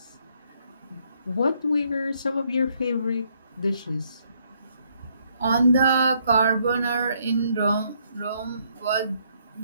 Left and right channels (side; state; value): both; inverted; correlation -0.71